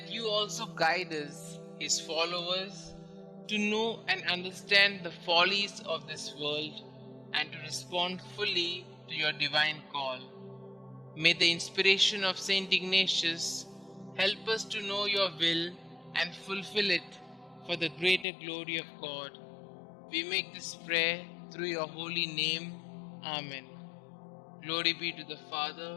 you also guide us, his followers, to know and understand the follies of this world and to respond fully to your divine call. May the inspiration of St Ignatius help us to know your will and fulfill it for the greater glory of God. We make this prayer through your holy name. Amen. Glory be to the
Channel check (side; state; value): right; drops out; at 18.2 s